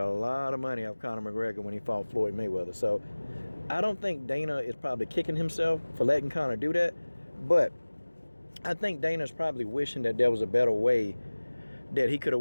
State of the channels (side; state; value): both; inverted; correlation -1.00